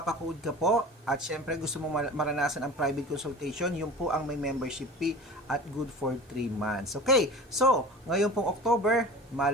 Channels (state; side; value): normal; both; correlation 0.37